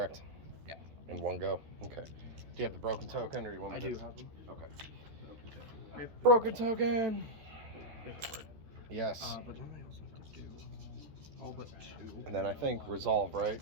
Yeah. In one go. Okay. Do you have the broken token, or you want? I do have them. Okay. Broken token. Paperwork. Yes. But then I also have to do all but 2. And then I think resolve, right?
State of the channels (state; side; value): late; left; 13 ms